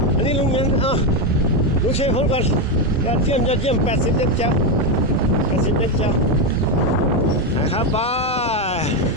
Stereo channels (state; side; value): normal; both; correlation 0.08